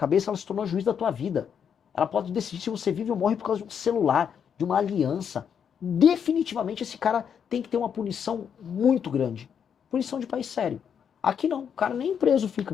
ela se tornou juiz da tua vida. Ela pode decidir se você vive ou morre por causa de um celular, de uma aliança. Definitivamente esse cara tem que ter uma punição muito grande. Punição de país sério. Aqui não, o cara nem preso fica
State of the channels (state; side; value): quieter; right; 7.7 dB